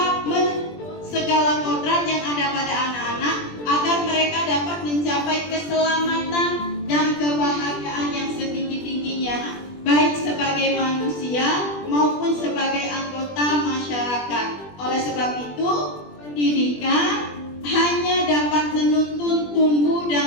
menuntut segala kodrat yang ada pada anak-anak agar mereka dapat mencapai keselamatan dan kebahagiaan yang setinggi-tingginya, baik sebagai manusia maupun sebagai anggota masyarakat. Oleh sebab itu, pendidikan hanya dapat menuntun tumbuh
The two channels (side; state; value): right; late; 20 ms